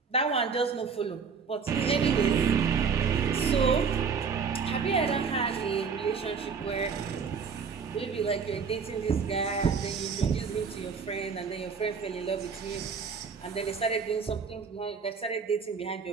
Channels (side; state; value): left; quieter; 5.7 dB